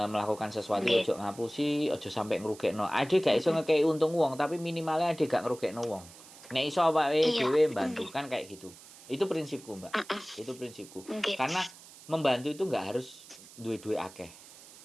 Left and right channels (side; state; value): right; noise; hiss, 20 dB below the sound